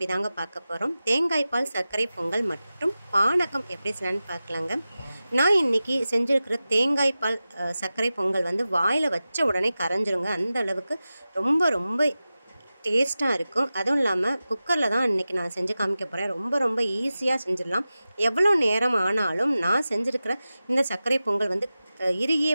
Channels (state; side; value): inverted; both; correlation -0.95